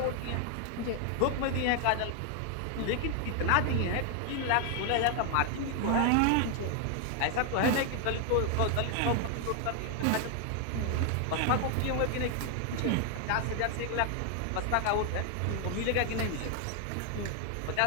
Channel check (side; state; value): both; different; correlation 0.00